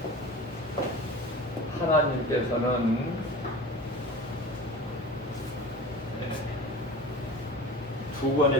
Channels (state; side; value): normal; both; correlation 0.36